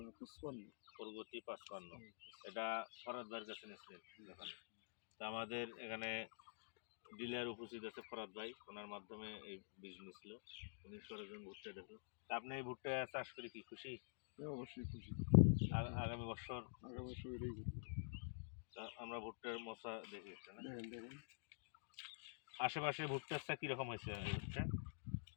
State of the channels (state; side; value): silent; right; digital silence